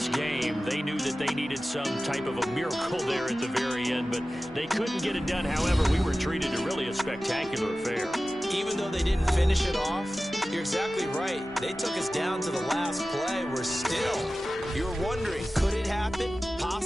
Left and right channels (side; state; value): both; normal; correlation 0.96